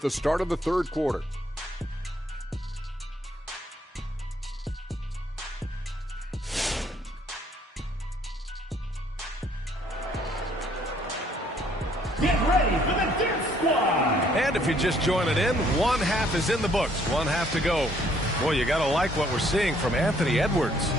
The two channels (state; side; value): normal; both; correlation 0.64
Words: the start of the third quarter. ready for the dance squad. And if you're just joining in, one half is in the books. One half to go. Boy, you got to like what we're seeing from Anthony Edwards.